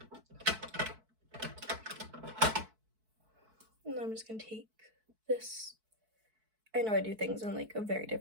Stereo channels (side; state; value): left; late; 4.6 ms